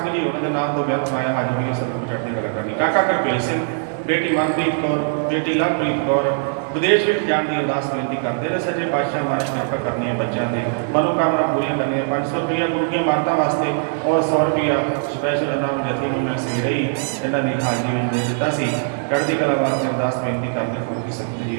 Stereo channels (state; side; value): silent; left; digital silence